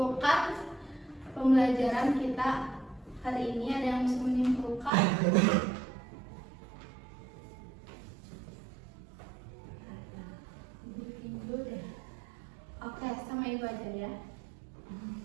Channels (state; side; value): drops out; left; at 4.9 s